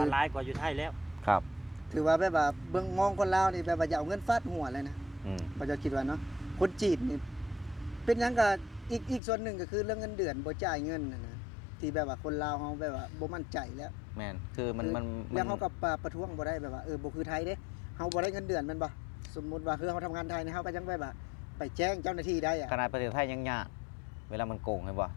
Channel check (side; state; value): right; drops out; at 9.2 s